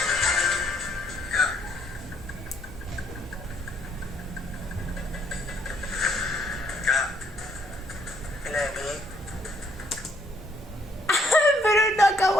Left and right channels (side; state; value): both; normal; correlation 0.68